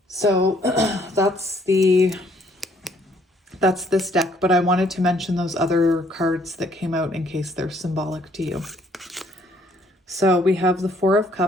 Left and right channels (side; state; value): both; normal; correlation 0.65